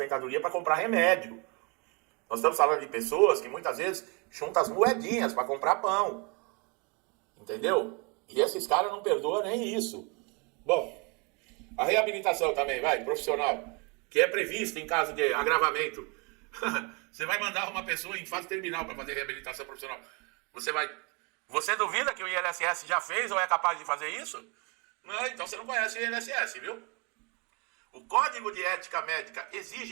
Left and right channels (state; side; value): quieter; left; 31.4 dB